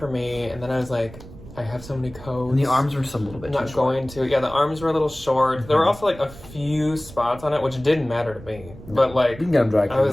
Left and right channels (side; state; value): right; noise; rumble, 17 dB below the sound